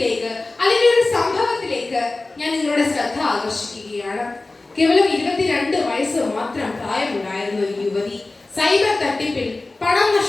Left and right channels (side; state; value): right; quieter; 3.2 dB